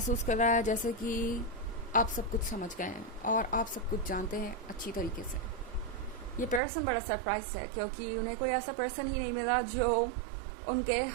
कर रहा है जैसे कि आप सब कुछ समझ गए हैं और आप सब कुछ जानते हैं अच्छी तरीके से। ये पर्सन बड़ा सरप्राइज है क्योंकि उन्हें कोई ऐसा पर्सन ही नहीं मिला जो उनके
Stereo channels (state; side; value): drops out; left; at 6.6 s